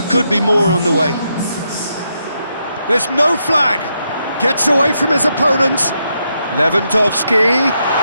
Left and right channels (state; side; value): inverted; both; correlation -0.81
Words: could be more on the way. There's no flag. Gets away from his opponent. Lewandowski.